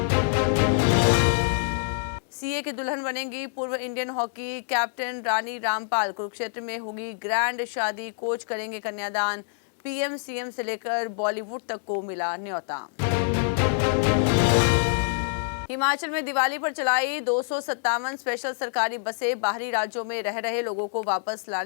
सीए की दुल्हन बनेंगी पूर्व Indian hockey captain Rani Rampal, Kurukshetra में होगी ग्रैंड शादी, कोच करेंगे कन्यादान। पीएम सीएम से लेकर बॉलीवुड तक को मिला न्योता। हिमाचल में दिवाली पर चलाई 257 स्पेशल सरकारी बसें, बाहरी राज्यों में रह रहे लोगों को वापस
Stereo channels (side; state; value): right; silent; digital silence